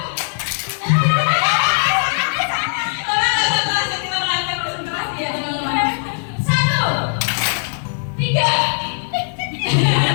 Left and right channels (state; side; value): silent; right; digital silence